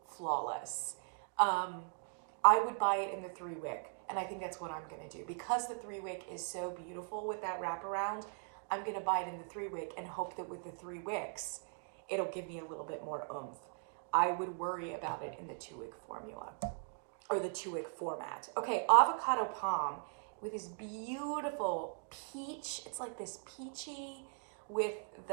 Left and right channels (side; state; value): left; silent; 52 dB below the other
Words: flawless. I would buy it in the 3-wick, and I think that's what I'm gonna do. Because the 3-wick is so beautiful with that wraparound, I'm gonna buy it in the 3-wick and hope that with the 3 wicks, it'll give me a little bit more oomph. I would worry about it in the 2-wick formula, or the 2-wick format. Okay, Avocado Palm with this beautiful peach. It's like this peachy with